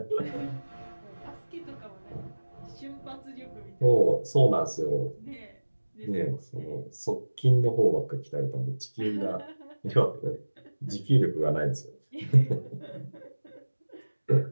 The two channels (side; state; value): both; inverted; correlation -1.00